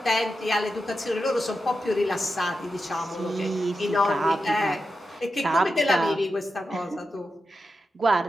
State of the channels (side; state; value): both; normal; correlation 0.89